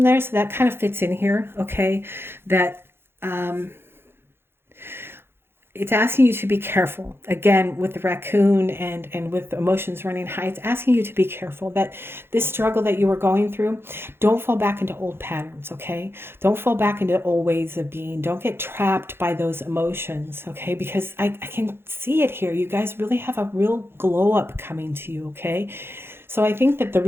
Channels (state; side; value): late; left; 0.11 ms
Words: there. So that kind of fits in here. Okay. That, it's asking you to be careful. Again, with the raccoon and with emotions running high, it's asking you to be careful that this struggle that you were going through, don't fall back into old patterns, okay? Don't fall back into old ways of being. Don't get trapped by those emotions, okay? Because I can see it here. You guys really have a real glow up coming to you, okay? So I think that the